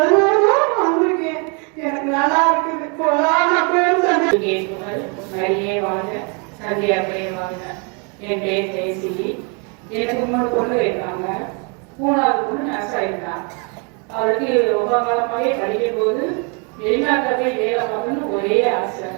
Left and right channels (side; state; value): left; quieter; 35.3 dB